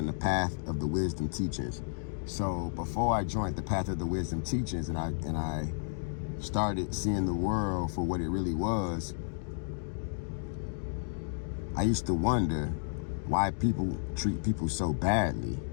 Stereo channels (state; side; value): silent; right; digital silence